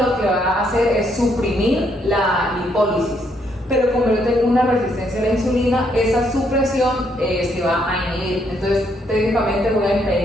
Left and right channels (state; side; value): normal; both; correlation 0.72